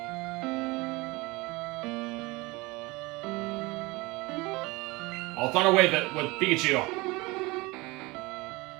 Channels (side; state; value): left; quieter; 23.5 dB